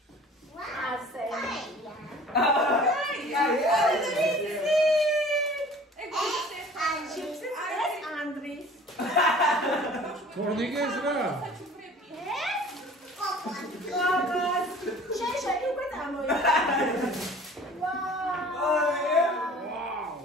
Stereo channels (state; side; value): normal; both; correlation 0.47